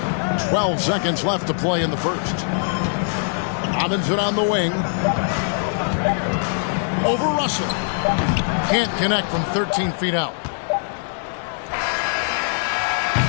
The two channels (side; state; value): right; silent; 57 dB below the other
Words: 12 seconds left to play in the first. Robinson on the wing. Over Russell. Can't connect from 13 feet out.